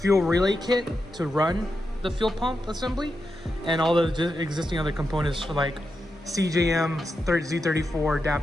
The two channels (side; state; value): both; normal; correlation 0.87